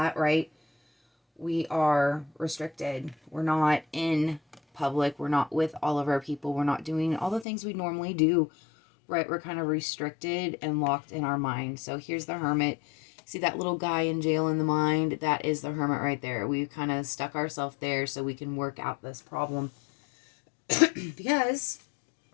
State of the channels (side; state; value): right; drops out; at 7.5 s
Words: right, we are restricted. We're not in public. We're not with all of our people. We're not doing all the things we normally do, right? We're kind of restricted and locked in our mind. So here's the hermit. See that little guy in jail in the mind? That is the hermit right there. We've kind of stuck ourselves there so we can work out this problem. Because